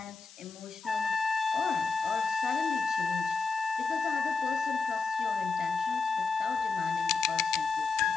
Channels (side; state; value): right; quieter; 4.5 dB